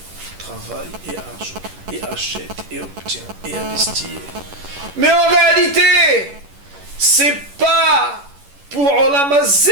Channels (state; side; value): late; left; 11 ms